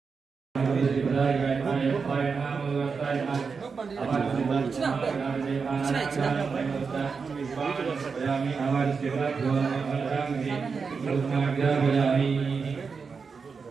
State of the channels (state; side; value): quieter; left; 5.3 dB